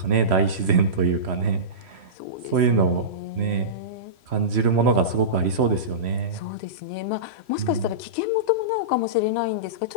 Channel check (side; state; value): left; late; 3.1 ms